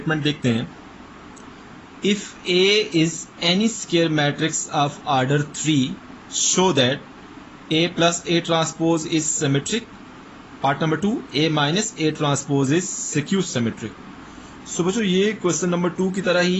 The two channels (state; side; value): identical; both; correlation 1.00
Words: देखते हैं, if A is any square matrix of order 3 show that A + A transpose is symmetric. Part number 2, A - A transpose is skew symmetric. So बच्चों ये क्वेश्चन नंबर 2 की तरह